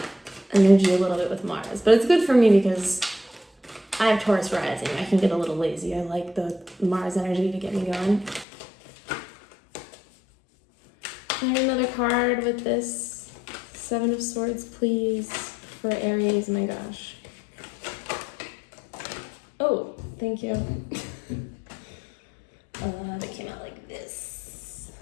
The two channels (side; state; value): right; drops out; at 8.5 s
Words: energy a little bit with Mars, but it's good for me because I have Taurus rising. I can get a little lazy. I like the Mars energy to get me going. Can I get another card with this Seven of Swords, please, for Aries? My gosh. Oh, thank you. That came out like this.